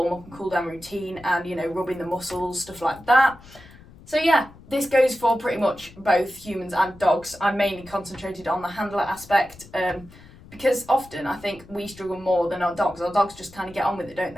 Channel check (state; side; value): noise; left; rumble, 21 dB below the sound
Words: up and cool down routine and, rubbing the muscles, stuff like that. So yeah, this goes for pretty much both humans and dogs. I'm mainly concentrated on the handler aspect because often I think we struggle more than our dogs. Our dogs just kind of get on with it, don't